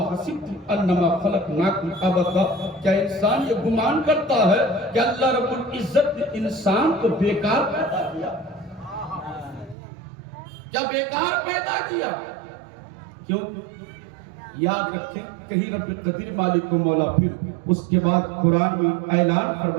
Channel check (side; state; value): left; drops out; at 9.8 s